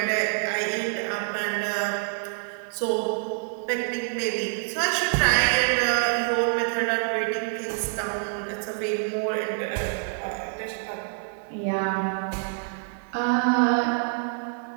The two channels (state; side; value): silent; left; 58 dB below the other